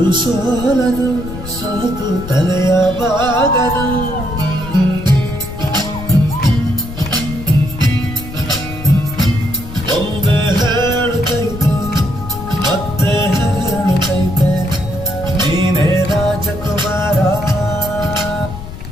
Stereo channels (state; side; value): noise; left; rumble, 11 dB below the sound